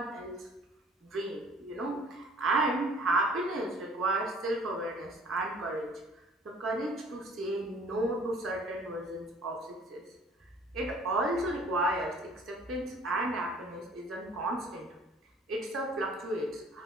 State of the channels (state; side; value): normal; both; correlation 0.53